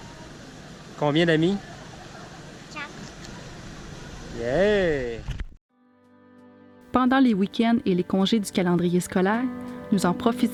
Combien d'amis? 4. Yeah! Pendant les week-ends et les congés du calendrier scolaire, nous en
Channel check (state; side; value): identical; both; correlation 1.00